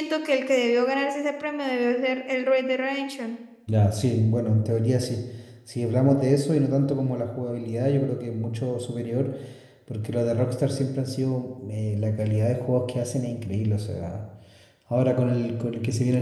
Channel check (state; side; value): identical; both; correlation 1.00